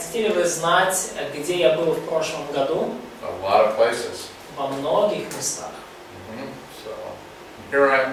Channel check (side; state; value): both; identical; correlation 1.00